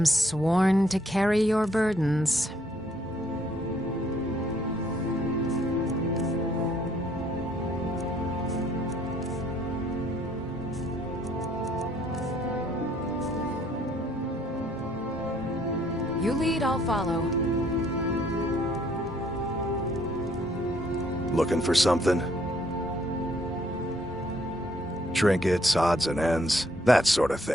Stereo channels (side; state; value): both; normal; correlation 0.66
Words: sworn to carry your burdens. You lead, I'll follow. Looking for something? Trinkets, odds and ends, that sort of